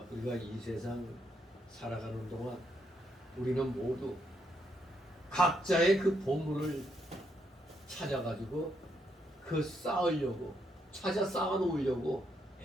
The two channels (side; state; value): both; normal; correlation 0.77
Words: 우리가 이 세상 살아가는 동안 우리는 모두 각자의 그 보물을 찾아가지고 그 쌓으려고 찾아 쌓아 놓으려고